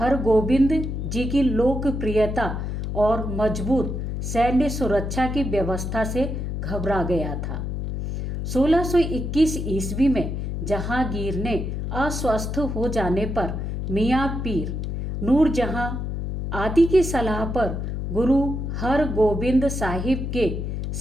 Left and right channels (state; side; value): noise; left; hum, 3 dB below the sound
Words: जी की लोकप्रियता और मजबूत सैन्य सुरक्षा की व्यवस्था से घबरा गया था। 1621 ईस्वी में जहांगीर ने अस्वस्थ हो जाने पर मियाँ पीर नूरजहां आदि की सलाह पर गुरु हरगोबिंद साहिब के